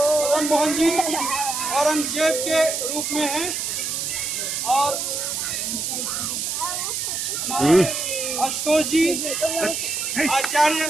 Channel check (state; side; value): noise; right; hiss, 2 dB below the sound